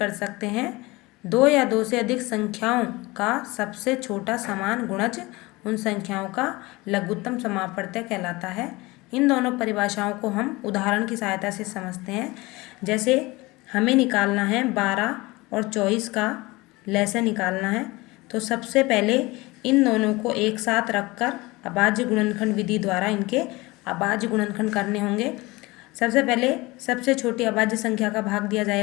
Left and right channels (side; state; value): right; quieter; 22.2 dB